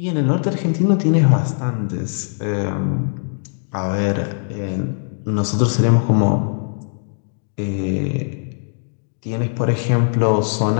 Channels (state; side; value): silent; right; digital silence